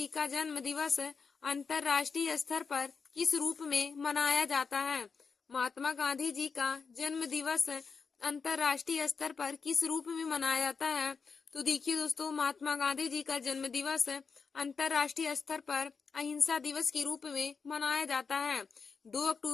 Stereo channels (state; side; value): quieter; right; 5.3 dB